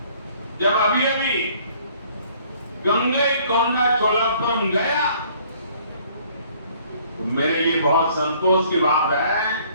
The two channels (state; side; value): inverted; both; correlation -0.59